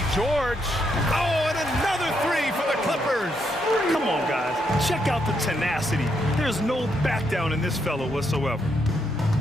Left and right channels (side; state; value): both; normal; correlation 0.78